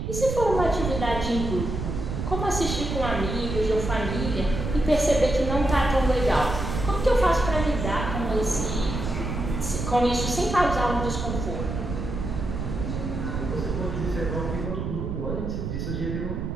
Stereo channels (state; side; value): noise; right; rumble, 4 dB below the sound